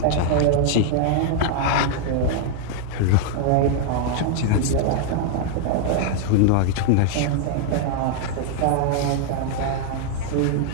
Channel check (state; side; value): different; both; correlation 0.00